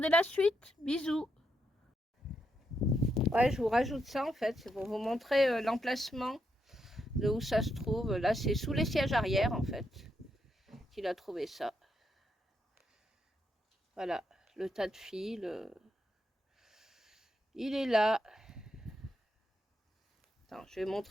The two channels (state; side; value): normal; both; correlation 0.80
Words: la suite. Bisous. Ouais, je vous rajoute ça en fait, c'est pour vous montrer l'emplacement de où ça se trouve. Là, c'est sous les sièges arrière en fait qu'il a trouvé ça. Voilà, le tas de fils, il est là. Attends, je vais